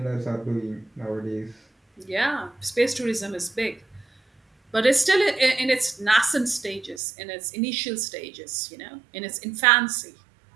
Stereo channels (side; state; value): left; drops out; at 7.0 s